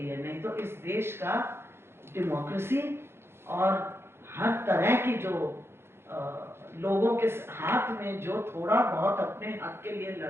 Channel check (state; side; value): late; left; 0.12 ms